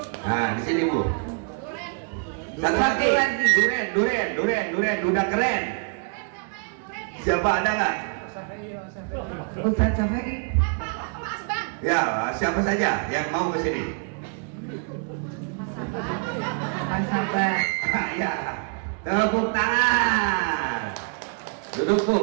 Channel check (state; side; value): quieter; left; 39.8 dB